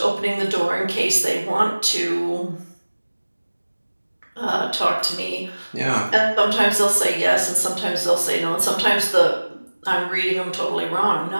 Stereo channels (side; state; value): both; inverted; correlation -1.00